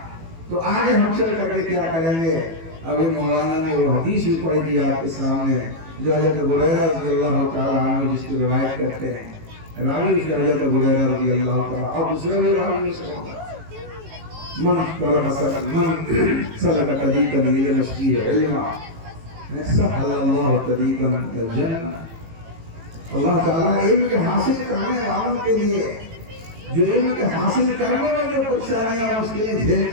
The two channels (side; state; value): left; late; 18 ms